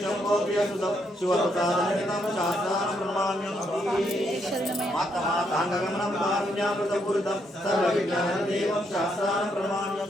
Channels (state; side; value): normal; both; correlation 0.76